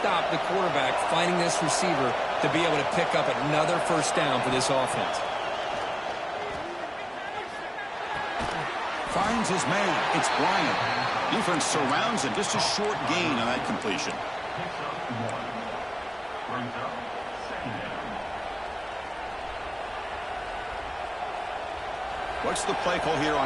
the quarterback finding this receiver to be able to pick up another first down for this offense. Finds his man. It's Bryant. Defense surrounds him. Just a short gain on that completion. What's the play call here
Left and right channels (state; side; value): identical; both; correlation 1.00